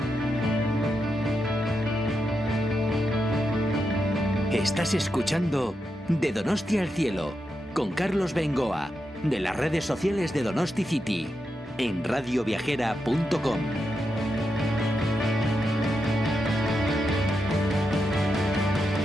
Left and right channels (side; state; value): both; normal; correlation 0.86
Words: Estás escuchando De Donosti al Cielo, con Carlos Bengoa, de las redes sociales de Donosti City, en radioviajera.com.